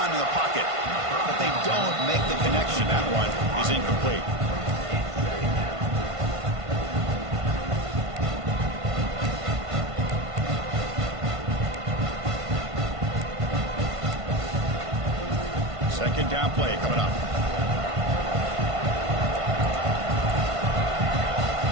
in the pocket, but they don't make the connection. That one is incomplete. Second down play coming up.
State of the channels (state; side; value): late; left; 1.5 ms